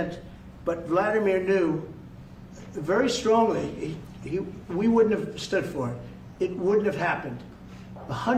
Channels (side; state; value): both; identical; correlation 1.00